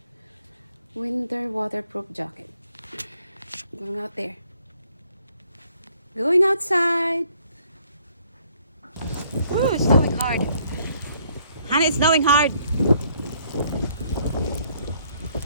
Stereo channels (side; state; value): both; inverted; correlation -0.66